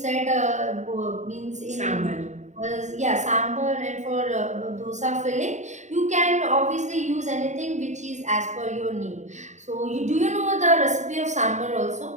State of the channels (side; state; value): left; late; 0.34 ms